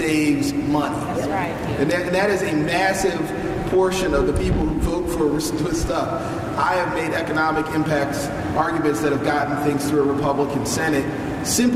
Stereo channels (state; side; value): identical; both; correlation 1.00